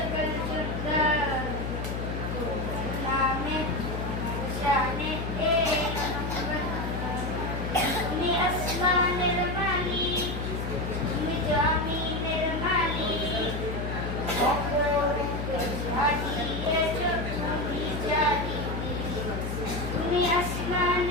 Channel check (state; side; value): noise; left; hum, 4 dB below the sound